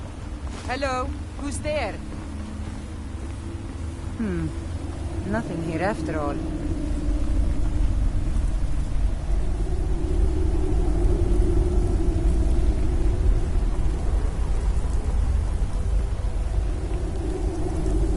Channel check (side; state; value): both; identical; correlation 1.00